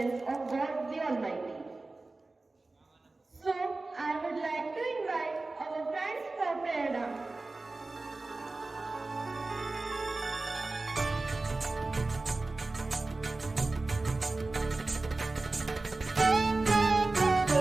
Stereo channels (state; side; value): quieter; left; 3.3 dB